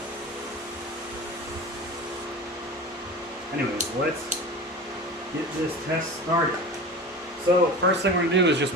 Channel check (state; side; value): normal; both; correlation 0.32